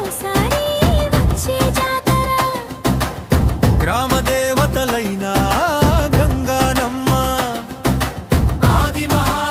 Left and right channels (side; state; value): both; identical; correlation 1.00